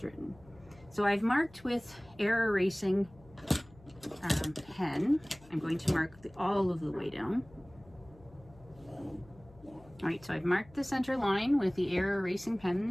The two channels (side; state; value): left; noise; hum, 24 dB below the sound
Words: written. So I've marked with air erasing pen. I'm going to mark all of the way down. All right, so I've marked the center line with the air erasing